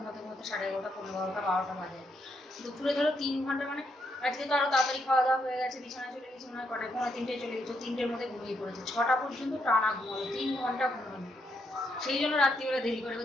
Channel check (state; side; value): normal; both; correlation 0.78